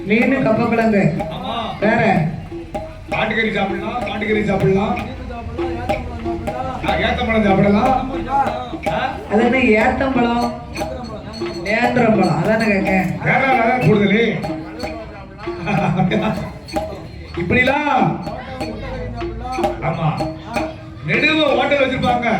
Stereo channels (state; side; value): identical; both; correlation 1.00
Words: மீன் கப்பக்கிழங்கு, வேற காட்டுக்கறி சாப்பிடலாம், காட்டுக்கறி சாப்பிடலாம், ஏத்தம்பழம் சாப்பிடலாம். அது என்ன ஏத்தம்பழம் நேந்திரம்பழம் அதானே கேட்க. கேரளால கூடுதலே இப்படிலாம். ஆமா, நெடுவ ஹோட்டல் வச்சிருப்பாங்க.